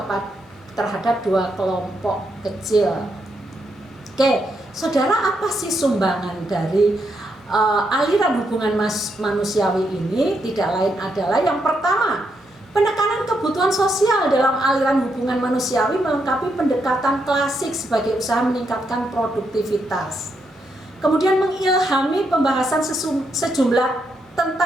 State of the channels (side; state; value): both; normal; correlation 0.80